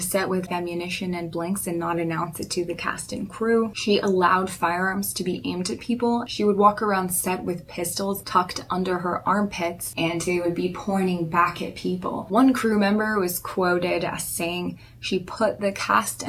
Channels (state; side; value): identical; both; correlation 1.00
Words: with ammunition and blanks and not announce it to the cast and crew. She allowed firearms to be aimed at people. She would walk around set with pistols tucked under her armpits, and they would be pointing back at people. One crew member was quoted as saying, "She put the cast